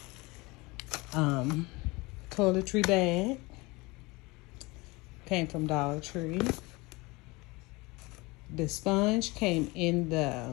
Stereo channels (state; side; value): quieter; right; 24.1 dB